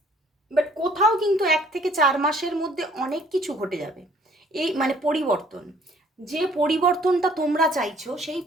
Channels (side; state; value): both; normal; correlation 0.59